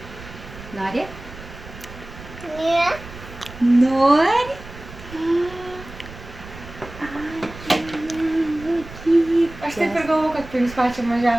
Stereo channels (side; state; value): right; noise; rumble, 15 dB below the sound